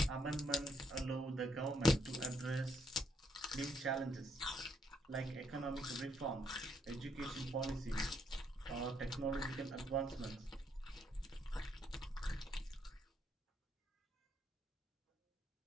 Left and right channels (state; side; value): normal; both; correlation 0.73